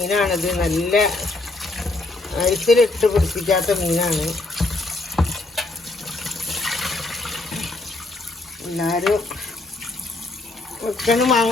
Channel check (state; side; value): quieter; right; 3.0 dB